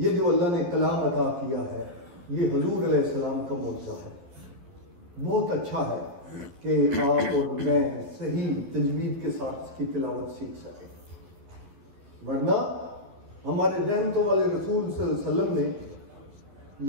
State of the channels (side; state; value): left; late; 12 ms